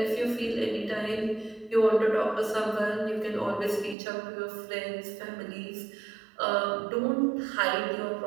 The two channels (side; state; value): left; drops out; at 4.0 s